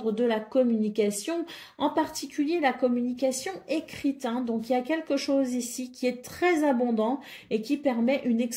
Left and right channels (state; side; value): identical; both; correlation 1.00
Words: de la communication, en particulier la communication écrite. Hein. Donc, il y a quelque chose ici qui est très abondant et qui permet une